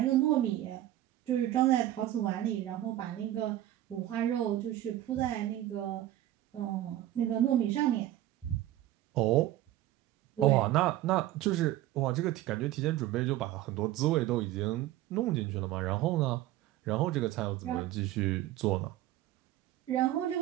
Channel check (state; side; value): quieter; left; 14.1 dB